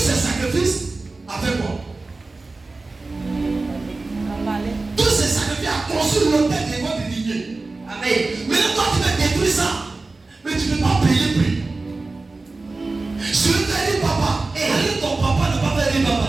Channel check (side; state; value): left; quieter; 3.5 dB